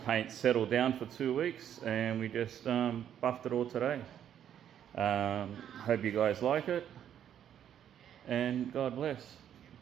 settle down for 2 weeks, and we just buffed it all today. Hope you guys like it, and God bless.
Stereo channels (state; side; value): quieter; left; 9.8 dB